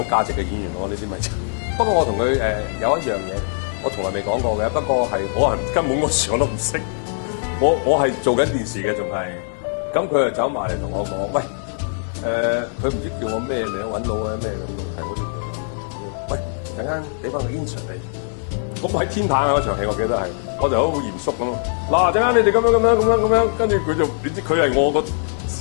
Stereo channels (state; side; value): silent; right; digital silence